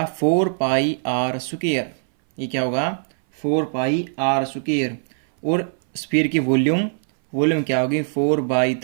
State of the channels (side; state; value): left; silent; 60 dB below the other